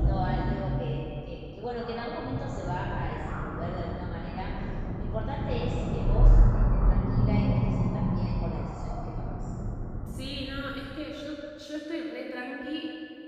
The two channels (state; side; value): identical; both; correlation 1.00